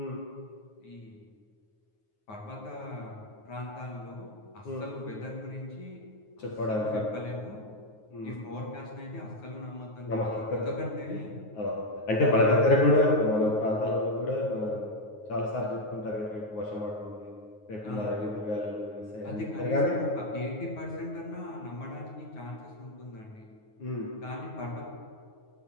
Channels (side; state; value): right; late; 9.4 ms